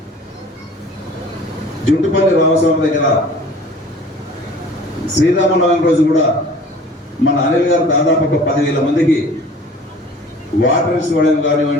జుంటుపల్లి రామస్వామి దగ్గర శ్రీరామనవమి రోజు కూడా మన అనిల్ గారు దాదాపు ఒక 10,000 మందికి వాటర్స్ ఇవ్వడం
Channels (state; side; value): normal; both; correlation 0.46